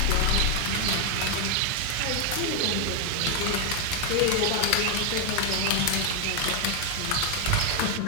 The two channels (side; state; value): both; different; correlation 0.01